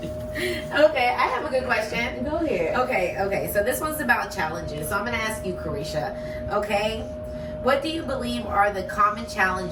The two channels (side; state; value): both; identical; correlation 1.00